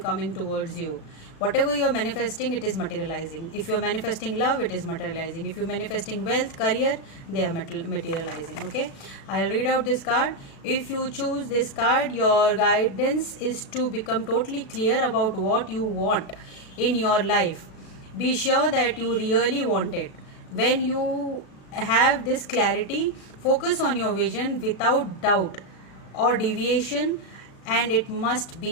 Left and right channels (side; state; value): right; late; 36 ms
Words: towards you. Whatever you're manifesting, it is materializing. If you're manifesting love, it is materializing. If you're manifesting wealth, career, they are materializing. Okay, I'll read out this card. If you choose this card, your guidance is to become totally clear about what you want in your life. Be sure that you really want it. When you have this clarity, focus on your vision without doubt or deviation, and it must